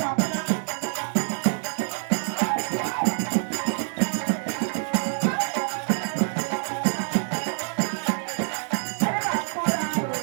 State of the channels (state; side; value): silent; left; digital silence